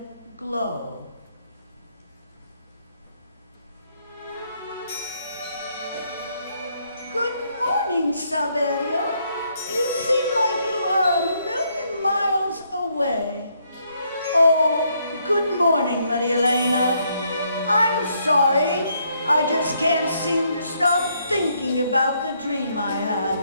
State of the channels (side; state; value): both; inverted; correlation -0.72